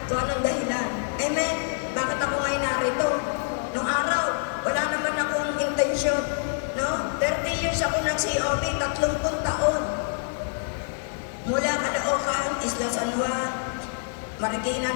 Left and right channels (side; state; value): right; silent; 58 dB below the other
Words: kung anong dahilan. Amen? Bakit ako ngayon narito? Nung araw, wala naman akong intensyon. No? 30 years ako nag-COB, 30 taon. Mula Caloocan, Isla San Juan, Marikina,